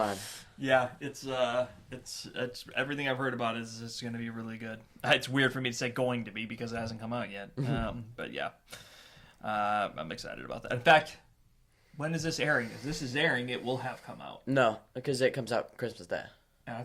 Yeah, it's everything I've heard about is it's going to be really good. It's weird for me to say going to be because it hasn't come out yet. But yeah, I'm excited about that. In fact, when is this airing? As this is airing, it will have come out. No, because it comes out Christmas Day. And I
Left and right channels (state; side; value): identical; both; correlation 1.00